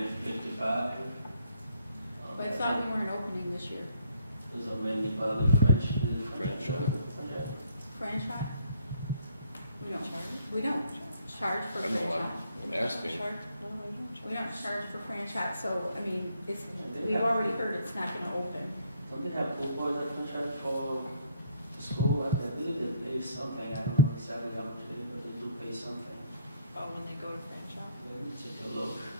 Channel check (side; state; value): both; inverted; correlation -0.67